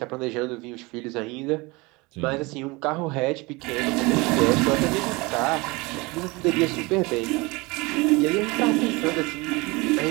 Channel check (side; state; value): left; quieter; 24.6 dB